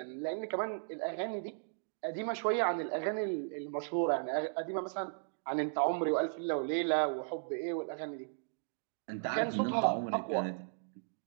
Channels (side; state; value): left; silent; digital silence